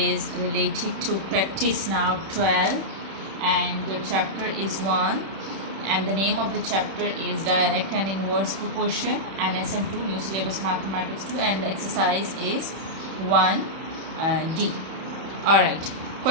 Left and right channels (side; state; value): left; late; 31 ms